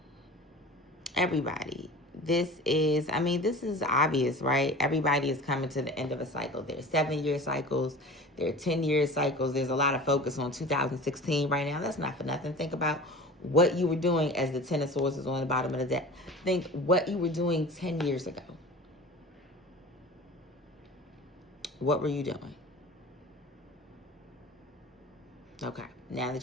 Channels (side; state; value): both; normal; correlation 0.38